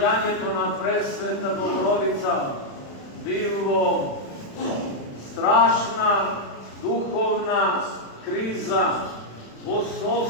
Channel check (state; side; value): late; right; 36 ms